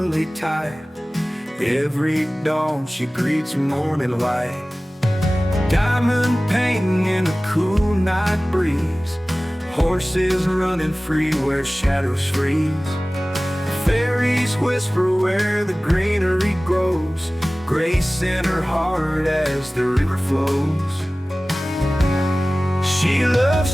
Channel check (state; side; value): normal; both; correlation 0.98